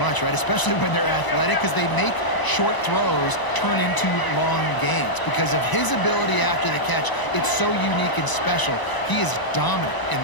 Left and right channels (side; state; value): right; late; 1.0 ms